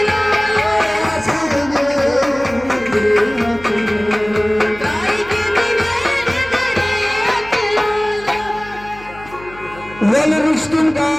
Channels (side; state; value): left; noise; hum, 20 dB below the sound